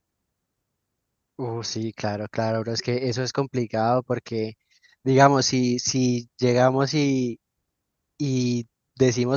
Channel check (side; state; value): both; identical; correlation 1.00